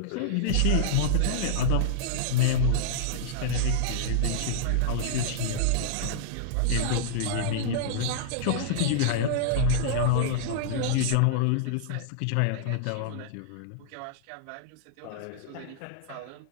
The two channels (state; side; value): different; both; correlation -0.02